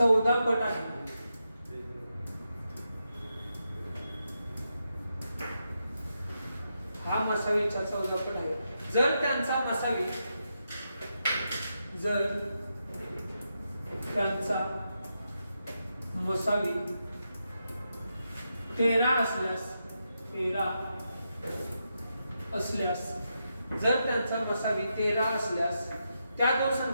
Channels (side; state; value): both; inverted; correlation -0.85